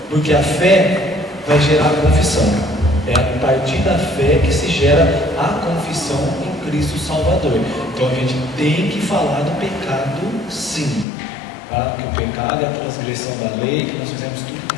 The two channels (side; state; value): right; drops out; at 11.1 s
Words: Porque a fé vai gerar a confissão. É a partir da fé que se gera a confissão em Cristo Salvador. Então a gente tem que falar do pecado, sim. Que o pecado é a transgressão da lei, que nós fizemos tudo que